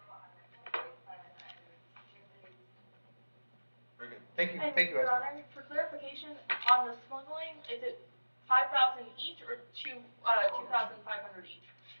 a la corte para el siguiente. Very good. Thank you, And thank you, Your Esther. Honor, for clarification, on the smuggling, is it 5,000 each or 2,500 each?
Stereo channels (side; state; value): both; inverted; correlation -1.00